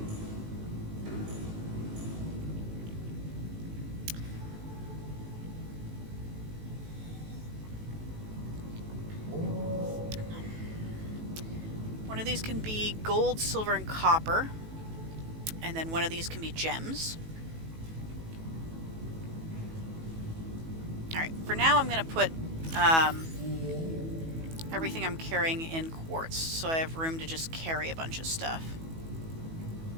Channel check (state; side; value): late; left; 18 ms